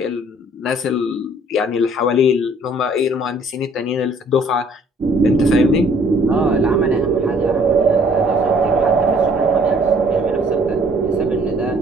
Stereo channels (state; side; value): normal; both; correlation 0.59